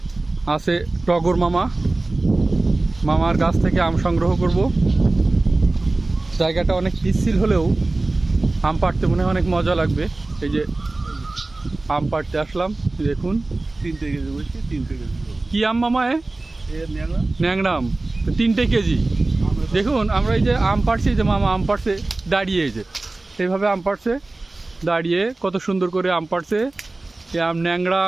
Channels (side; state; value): left; quieter; 3.1 dB